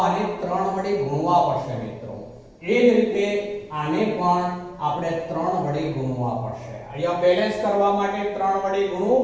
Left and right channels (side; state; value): both; identical; correlation 1.00